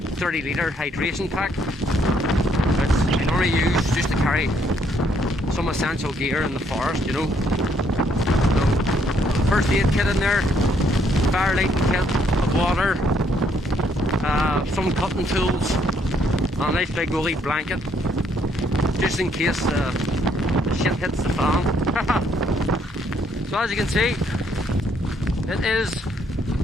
hydration pack, which I normally use just to carry some essential gear in the forest, you know. So, first aid kit in there, fire lighting kit, water, some cutting tools, and a nice big woolly blanket, just in case the shit hits the fan. So as you can see, it is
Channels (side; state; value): both; normal; correlation 0.69